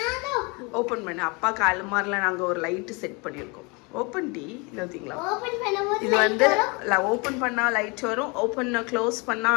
ஓபன் பண்ணு. அப்பா காலமார்ல நாங்க ஒரு லைட் செட் பண்ணிருக்கோம். ஓபன் டி இல்லீங்களா? ஓபன் பண்ணும்போது இது வந்து ஓபன் பண்ணா லைட் வரும், ஓபன் க்ளோஸ் பண்ணா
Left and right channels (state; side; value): quieter; right; 29.4 dB